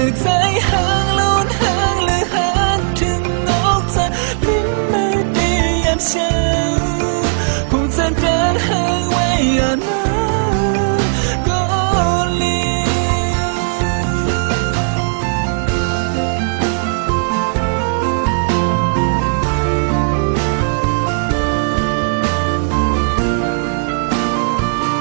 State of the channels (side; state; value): left; silent; digital silence